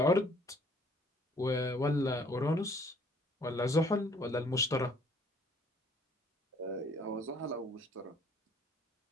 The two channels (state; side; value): normal; both; correlation 0.60